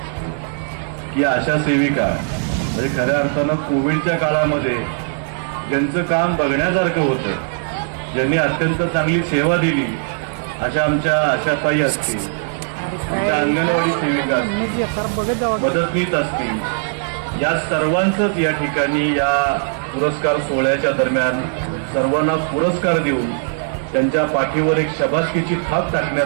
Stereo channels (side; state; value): left; silent; 63 dB below the other